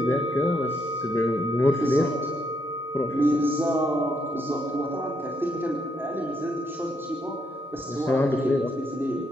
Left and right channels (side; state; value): both; normal; correlation 0.75